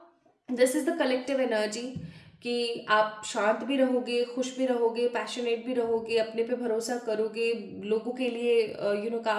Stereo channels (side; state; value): both; identical; correlation 1.00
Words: this is the collective energy कि आप शांत भी रहोगे, खुश भी रहोगे, पैशनेट भी रहोगे, अपने पे भरोसा करोगे, लोगों के लिए